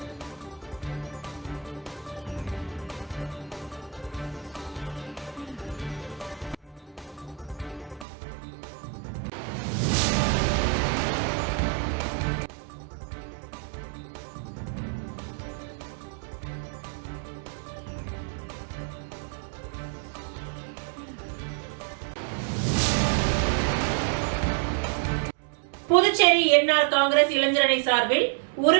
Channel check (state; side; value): drops out; left; at 8.1 s